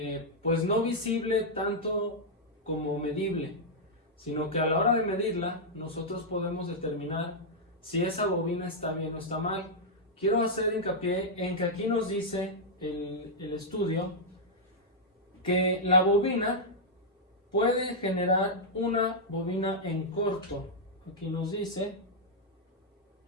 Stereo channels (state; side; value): normal; both; correlation -0.06